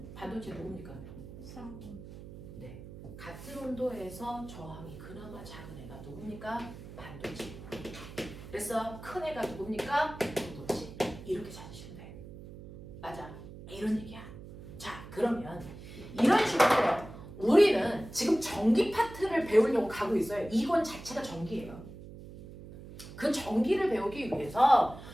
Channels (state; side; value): noise; right; hum, 14 dB below the sound